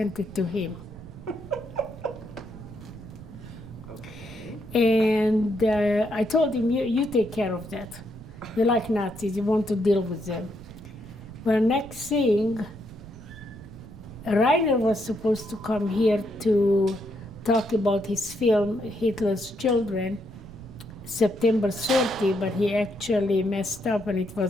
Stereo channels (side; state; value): right; noise; rumble, 16 dB below the sound